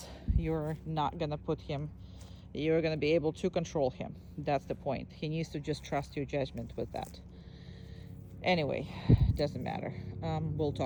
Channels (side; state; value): both; identical; correlation 1.00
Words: you're not gonna put him. You're gonna be able to control him. That's the point. He needs to just trust your judgment with that. Anyway, doesn't matter. We'll